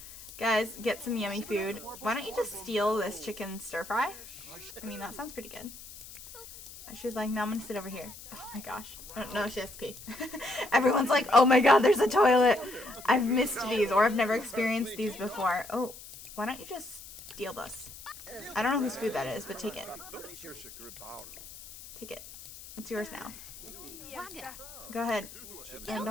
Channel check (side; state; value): left; noise; hiss, 15 dB below the sound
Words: Guys, get some yummy food. Why don't you just steal this chicken stir-fry? I mean, that sounds pretty good. She's like, no, I'm gonna sit over here. Oh my gosh. Oh, no, she has to pee. Everyone's like, oh my god, there's a toilet. I've missed these, or I've never experienced these before. Oh, why don't you just steal this? I don't know whose food that is, but take it. Take it. It's yours now. Go ahead. And